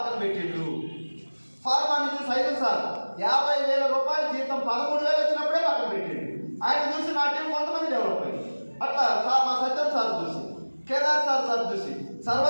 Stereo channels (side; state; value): both; inverted; correlation -1.00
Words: పెట్టిండు. ఫార్మా నుంచి సైదుల్ సార్ 50,000 రూపాయల జీతం 13,000 వచ్చినప్పుడే పక్కన పెట్టిండు. ఆయన చూసి నా టీం కొంతమంది డెవలప్ అయ్యింది. అట్లా సార్ మా సత్యం సార్ చూసి, కేదార్ సార్ చూసి,